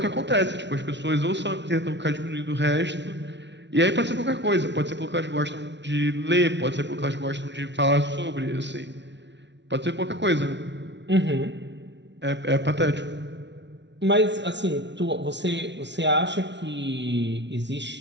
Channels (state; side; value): late; left; 0.51 ms